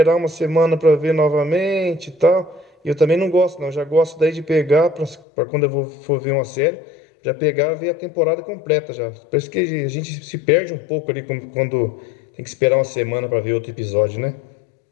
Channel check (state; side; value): drops out; right; at 5.2 s